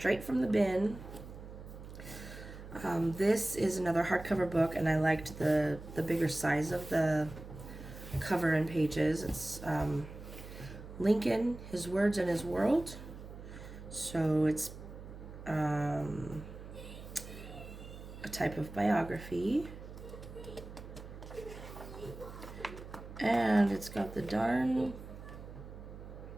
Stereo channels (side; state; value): right; noise; hum, 13 dB below the sound